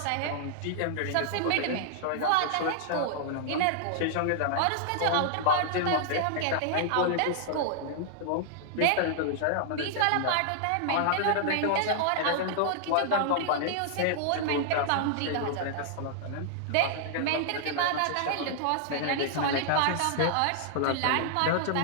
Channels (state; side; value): different; both; correlation -0.01